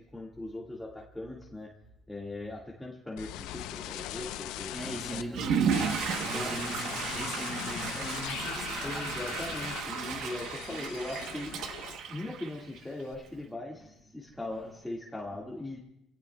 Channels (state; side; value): normal; both; correlation 0.59